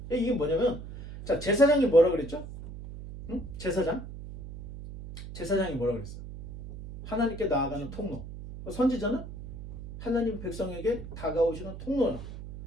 이게 뭐냐면 자, 제사장이 뭐라 그랬죠? 응? 제사장? 제사장이 뭐라 그랬어요? 하나님께 나아가는 통로. 선지자는 하나님 백성에게 다가오시는 통로야.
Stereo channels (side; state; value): right; noise; hum, 11 dB below the sound